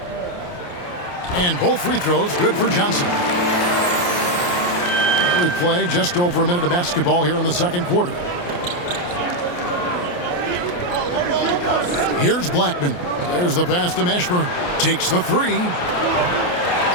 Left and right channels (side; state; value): right; late; 28 ms